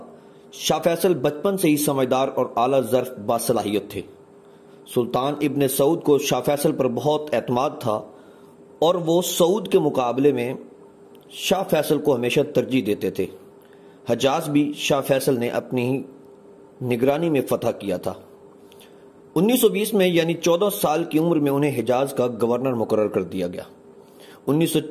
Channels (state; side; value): identical; both; correlation 1.00